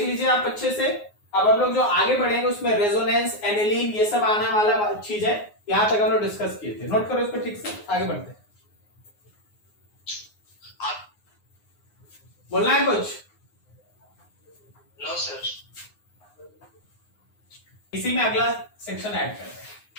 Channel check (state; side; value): late; right; 9.6 ms